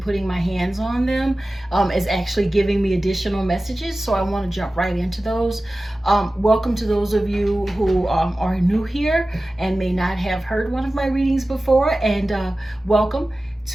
putting my hands on them is actually giving me additional messages. So I want to jump right into those. Welcome to those of you who are new here and may not have heard one of my readings before. And welcome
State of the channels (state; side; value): normal; both; correlation 0.96